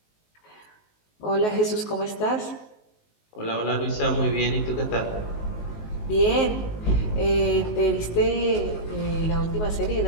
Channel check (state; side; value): late; right; 19 ms